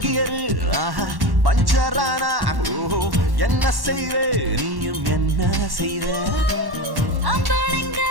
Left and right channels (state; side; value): late; left; 1.1 ms